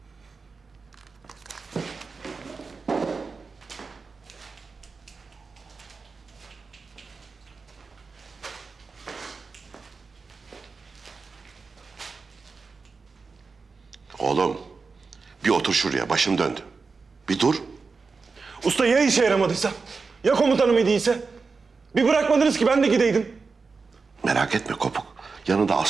Oğlum, bir otur şuraya. Başım döndü. Bir dur. Usta ya işe yaramadıysa? Ya komutanım iyi değilse? Bir bırakmadınız ki ben de gideydim. Merak etme Kopuk. Yanında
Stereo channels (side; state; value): left; quieter; 4.5 dB